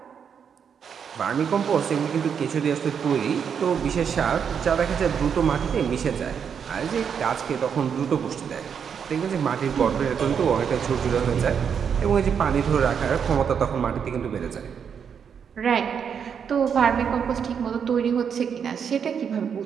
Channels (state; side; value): quieter; left; 7.3 dB